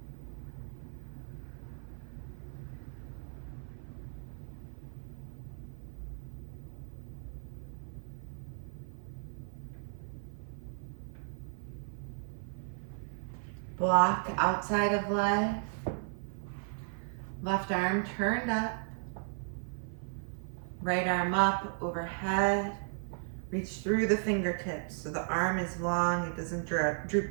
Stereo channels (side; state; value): left; silent; 54 dB below the other